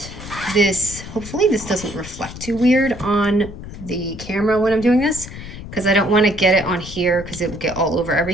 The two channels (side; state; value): left; noise; rumble, 12 dB below the sound